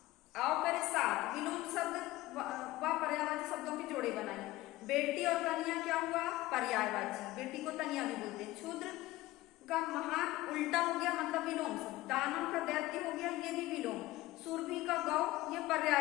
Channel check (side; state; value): right; quieter; 17.6 dB